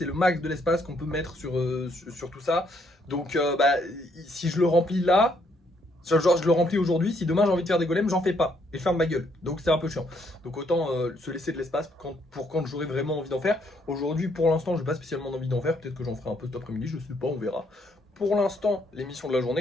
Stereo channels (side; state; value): both; normal; correlation 0.70